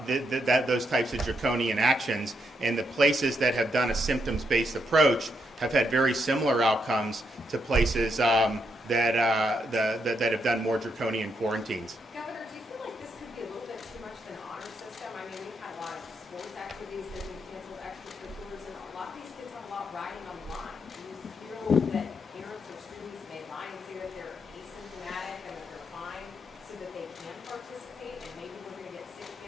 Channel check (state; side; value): normal; both; correlation 0.79